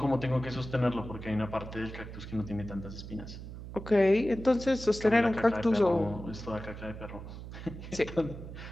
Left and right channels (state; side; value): noise; right; hum, 11 dB below the sound